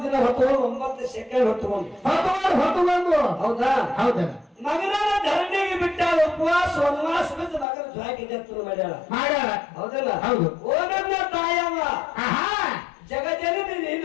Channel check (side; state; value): right; drops out; at 7.7 s